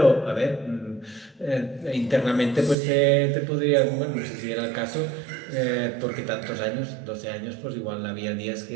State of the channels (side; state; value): left; drops out; at 2.8 s